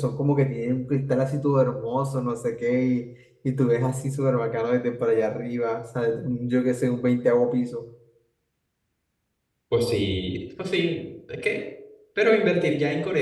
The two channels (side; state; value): both; identical; correlation 1.00